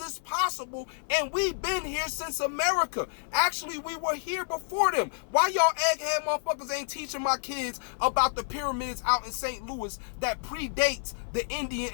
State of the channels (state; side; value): silent; right; 58 dB below the other